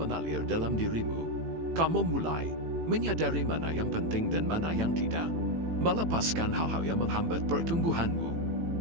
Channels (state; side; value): late; left; 18 ms